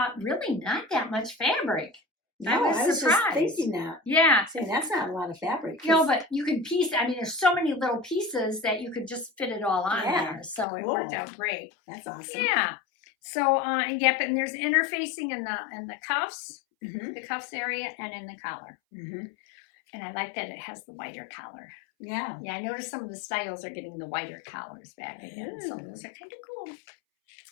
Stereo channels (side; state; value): right; drops out; at 10.7 s